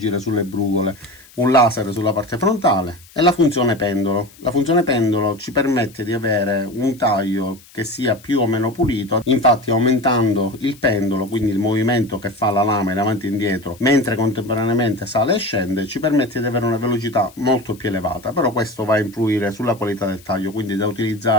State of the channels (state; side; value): noise; left; hiss, 25 dB below the sound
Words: sulle brugole, un laser sulla parte frontale e la funzione pendolo. La funzione pendolo ci permette di avere un taglio che sia più o meno pulito, infatti aumentando il pendolo, quindi il movimento che fa la lama in avanti e indietro mentre contemporaneamente sale e scende, ci permette di avere una velocità molto più elevata. Però questo va a influire sulla qualità del taglio, quindi da